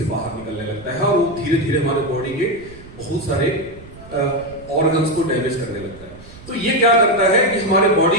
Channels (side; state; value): right; noise; rumble, 19 dB below the sound